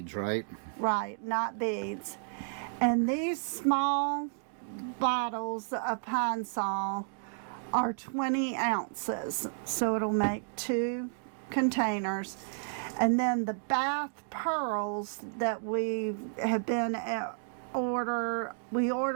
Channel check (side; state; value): left; silent; digital silence